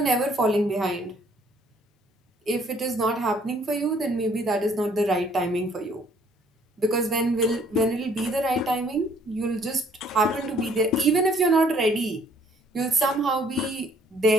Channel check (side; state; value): both; normal; correlation 0.62